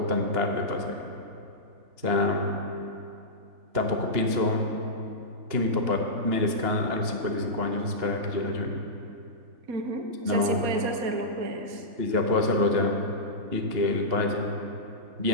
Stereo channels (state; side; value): late; left; 2.9 ms